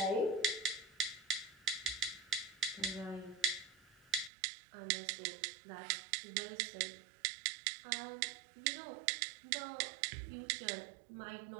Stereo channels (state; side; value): drops out; left; at 4.3 s